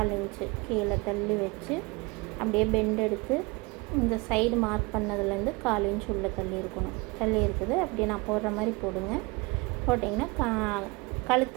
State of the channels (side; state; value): left; quieter; 26.2 dB